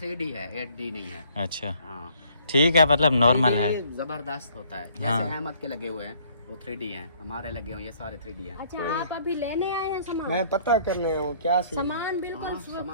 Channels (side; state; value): both; inverted; correlation -0.62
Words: है, 8D नहीं है। अच्छा हाँ ठीक है, मतलब नॉर्मल है। ये जबरदस्त होता है। जैसे हाँ। अहमद के लगे हुए हैं वो 3D हैं, हमारे लगे हुए ये सारे 3D हैं। अच्छा आप अभी लेने आए हैं सामान? मैं पता करने हूँ क्या सीन है। सामान बिल्कुल